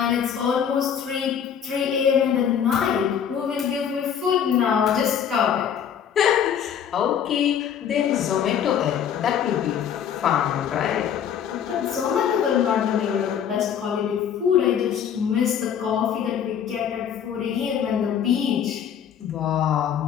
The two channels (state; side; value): quieter; right; 8.5 dB